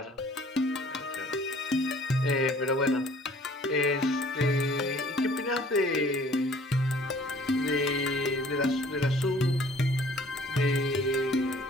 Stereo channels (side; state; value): both; normal; correlation 0.55